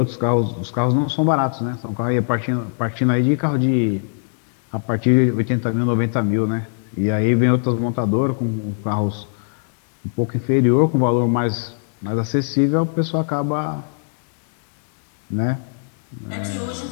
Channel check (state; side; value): silent; right; digital silence